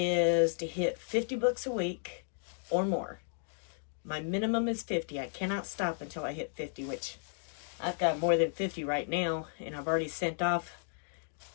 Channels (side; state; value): right; silent; digital silence